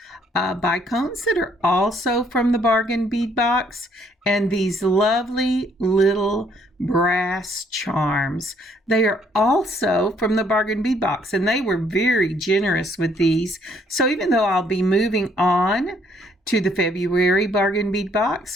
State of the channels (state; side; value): normal; both; correlation 0.66